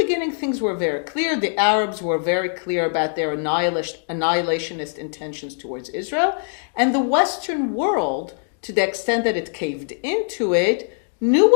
things were very clear. The Arabs were very clear about their annihilationist intentions towards Israel. And the Western world, to the extent that it caved into it, knew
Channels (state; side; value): silent; right; digital silence